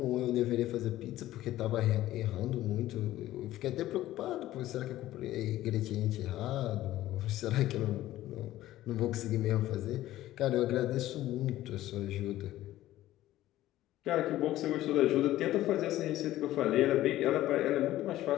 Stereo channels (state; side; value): quieter; right; 14.8 dB